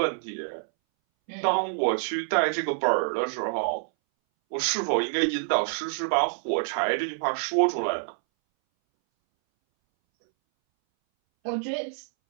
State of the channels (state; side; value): silent; left; 60 dB below the other